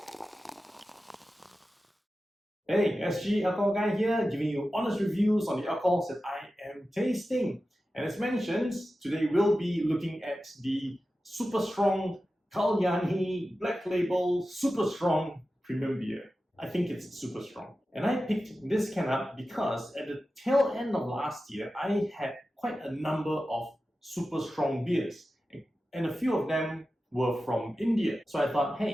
Hey, SG Alcohol Guy here, giving you honest reviews on the alcohols that I am tasting. And as mentioned, today we'll be looking at the Super Strong Kalyani Black Label Super Strong Premium Beer. I think it's super strong. And I picked this can up because at the tail end of last year, I had quite a number of super strong beers. And a few of them were from India. So I thought,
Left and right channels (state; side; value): normal; both; correlation 0.93